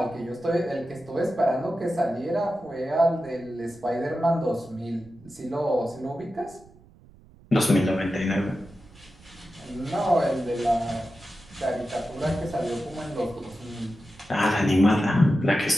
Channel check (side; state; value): right; noise; rumble, 25 dB below the sound